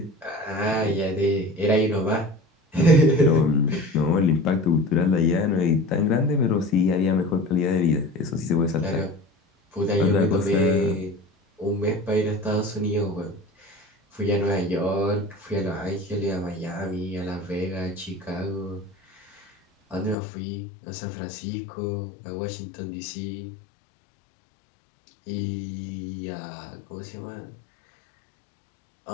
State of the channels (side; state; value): right; drops out; at 20.2 s